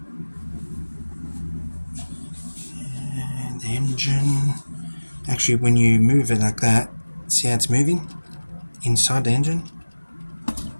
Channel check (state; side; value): inverted; both; correlation -1.00